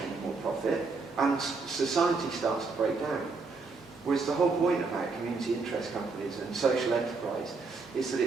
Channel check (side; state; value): left; quieter; 4.2 dB